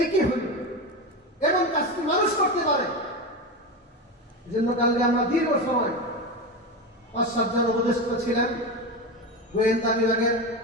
একই হইল এমন কাজটি মানুষ করতে পারে। এজন্য কালকে আমরা দীর্ঘ সময় ৫-৭ জন উপদেষ্টা ছিলেন, গোয়েন্দা বিভাগের,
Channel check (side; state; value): both; normal; correlation 0.19